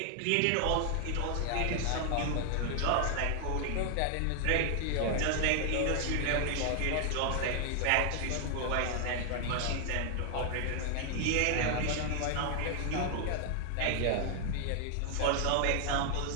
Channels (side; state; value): both; different; correlation 0.00